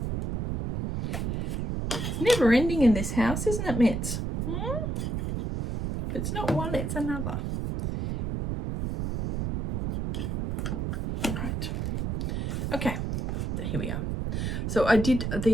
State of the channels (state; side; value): noise; right; rumble, 2 dB below the sound